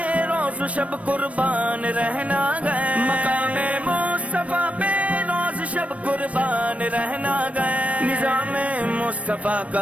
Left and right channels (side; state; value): left; late; 0.065 ms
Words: روز و شب قربان رہنا گئے، مقام مصطفیٰ پہ روز شب قربان رہنا گئے، نظام مصطفیٰ